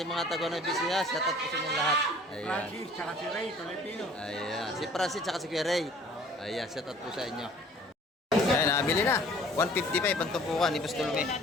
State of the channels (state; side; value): normal; both; correlation 0.52